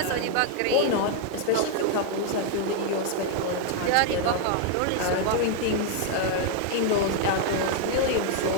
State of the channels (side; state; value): both; different; correlation 0.00